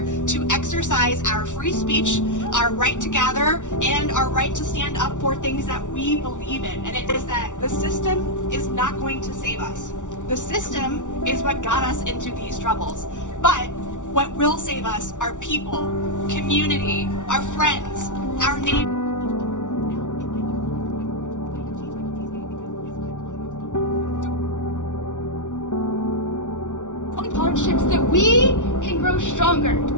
exercise our free speech, our right to gather, and our right to stand up for things that we believe in. And it is that the system is not going to save us. The system is what got us into these troubles. But what will save us are people, community, our friends, our neighbors. Hardships that we can grow stronger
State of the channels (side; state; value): right; late; 0.86 ms